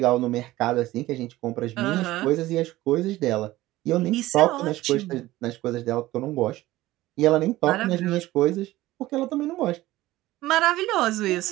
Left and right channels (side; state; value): left; quieter; 16.9 dB